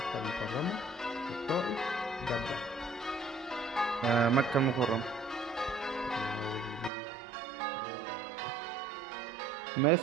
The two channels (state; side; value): drops out; left; at 6.9 s